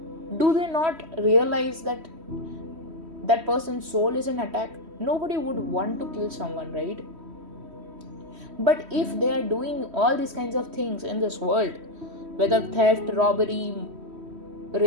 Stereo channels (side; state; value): left; late; 3.1 ms